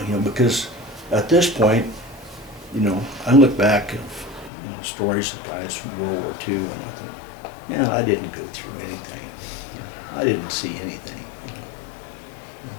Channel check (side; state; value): right; drops out; at 4.5 s